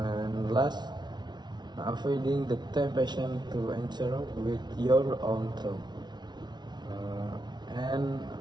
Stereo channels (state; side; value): late; left; 0.20 ms